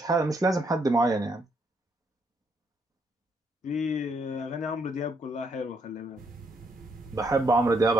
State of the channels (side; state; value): both; normal; correlation 0.73